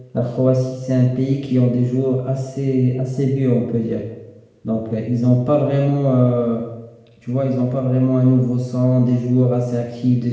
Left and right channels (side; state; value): both; identical; correlation 1.00